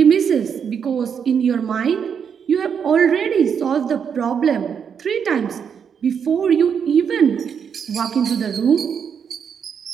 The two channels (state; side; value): quieter; left; 7.2 dB